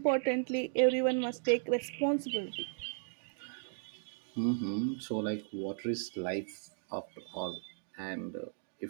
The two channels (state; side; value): silent; left; digital silence